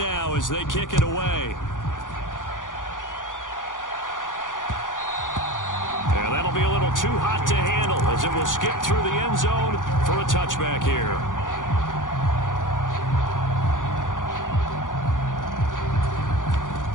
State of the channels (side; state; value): right; late; 0.88 ms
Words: as they kick it away. And that'll be a little too hot to handle as it will skip through the end zone for a touchback here.